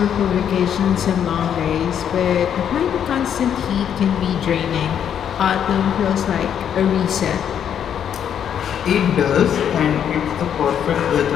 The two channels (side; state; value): right; quieter; 8.9 dB